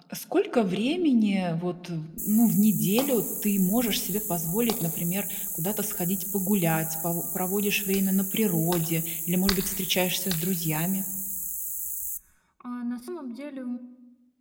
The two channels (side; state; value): both; identical; correlation 1.00